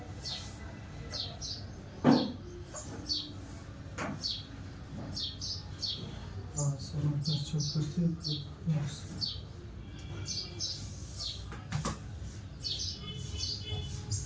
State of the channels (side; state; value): both; identical; correlation 1.00